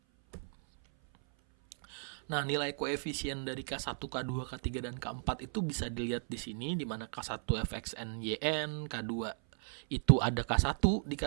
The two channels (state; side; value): silent; left; 54 dB below the other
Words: Nah, nilai koefisien dari K1, K2, K3, dan K4 itu bisa dilihat di sini, di mana K1 fxn yn, K2 itu ada K1 di